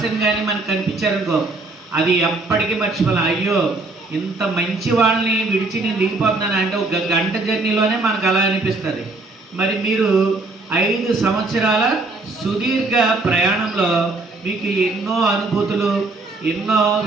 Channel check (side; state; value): left; quieter; 3.3 dB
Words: కానీ మనకు కనిపించారనుకో, అది ఎప్పటికీ మర్చిపోలేం. అయ్యో ఇంత మంచి వాళ్ళని విడిచి నేను దిగిపోతున్నాను అంటే 1 గంట జర్నీలోనే మనకు అలా అనిపిస్తుంది. మరి మీరు 5 సంవత్సరాల సుదీర్ఘ ప్రయాణంలో మీకు ఎన్నో అనుభూతులు, ఎన్నో